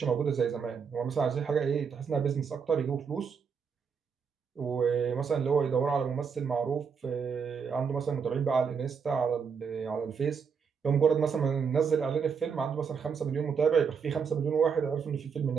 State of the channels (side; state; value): left; quieter; 6.2 dB